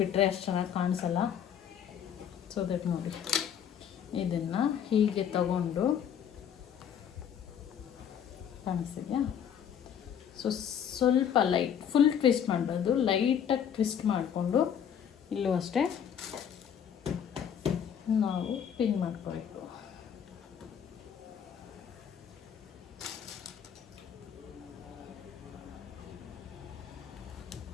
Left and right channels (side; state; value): right; quieter; 8.6 dB